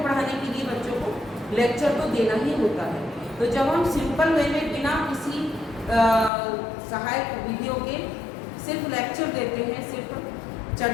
पढ़ाने के लिए बच्चों को लेक्चर तो देना ही होता है। तो जब हम सिंपल वे में बिना किसी सहायक विधियों के सिर्फ लेक्चर देते हैं, सिर्फ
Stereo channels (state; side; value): drops out; right; at 6.3 s